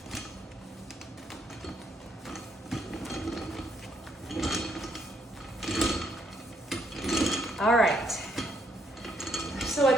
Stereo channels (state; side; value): normal; both; correlation 0.72